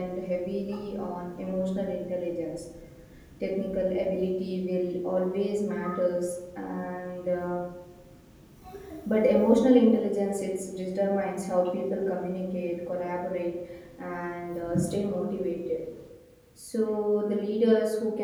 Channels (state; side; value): identical; both; correlation 1.00